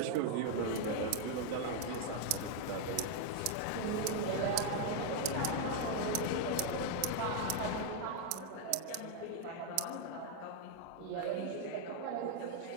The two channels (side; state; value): both; different; correlation 0.00